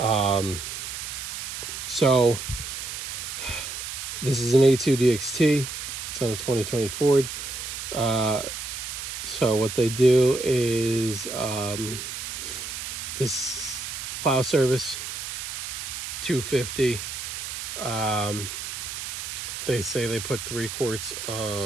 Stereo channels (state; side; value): noise; right; hiss, 6 dB below the sound